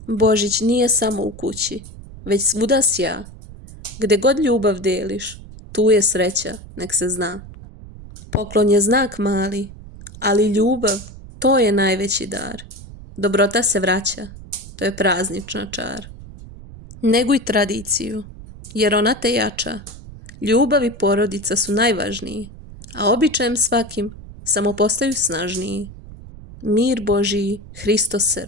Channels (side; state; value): right; noise; rumble, 16 dB below the sound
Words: Božić nije samo u kući, već svuda sja, gde god ljubav deliš, tu je sreća, nek se zna. Poklon je znak mali, ali ljubav, to je najveći dar. Dobrota se vraća, to je praznična čar. Neguj tradiciju, jer ona te jača, Ljubav i porodica su najvažniji, a običajem svakim samo postaju snažniji. Mir Božiji, Hristos se